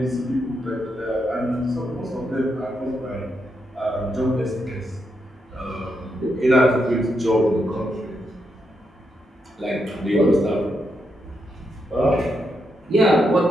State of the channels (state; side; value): normal; both; correlation 0.82